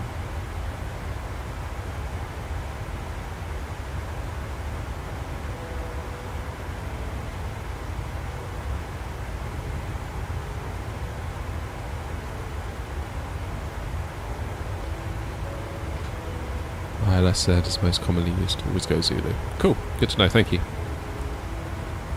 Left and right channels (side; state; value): both; identical; correlation 1.00